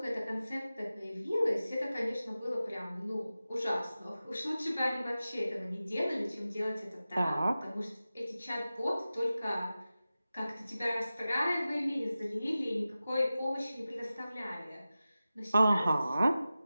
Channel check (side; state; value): both; inverted; correlation -0.95